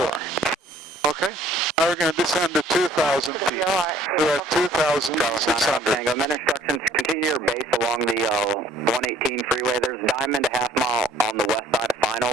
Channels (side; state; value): both; normal; correlation 0.58